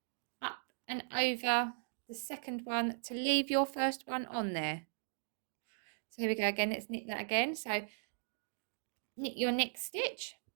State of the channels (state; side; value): silent; left; digital silence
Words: up and over the second one to leave your first one on there. So here we go again. Let's knit that again. So knit your next stitch